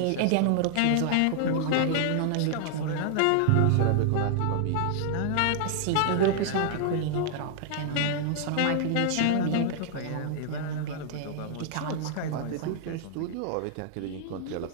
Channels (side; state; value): both; different; correlation 0.00